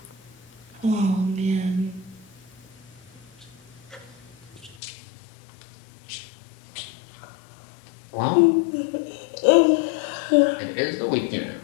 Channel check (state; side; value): drops out; right; at 4.8 s